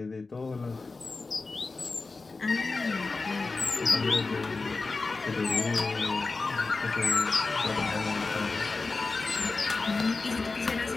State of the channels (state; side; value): quieter; right; 3.8 dB